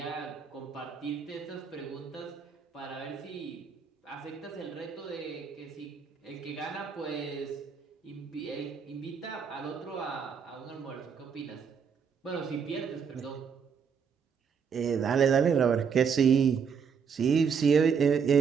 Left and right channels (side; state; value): left; quieter; 6.5 dB